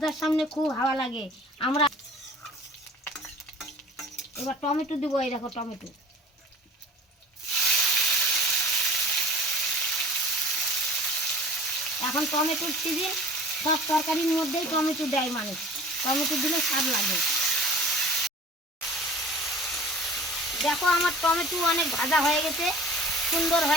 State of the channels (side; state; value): both; normal; correlation 0.44